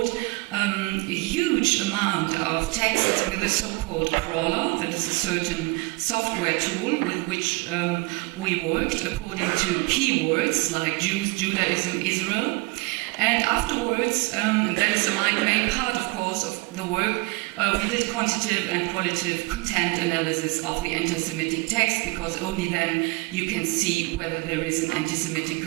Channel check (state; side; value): quieter; left; 25.9 dB